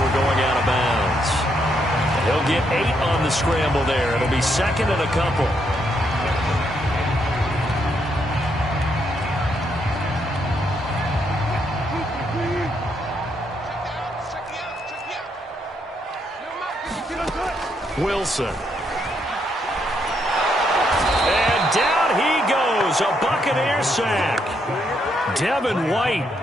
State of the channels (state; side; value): normal; both; correlation 0.76